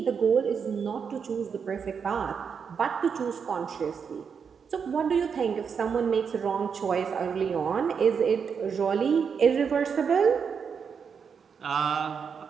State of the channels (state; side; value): quieter; left; 6.4 dB